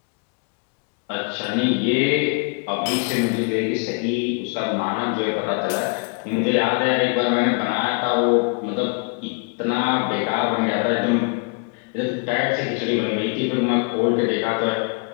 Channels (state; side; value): quieter; right; 34.9 dB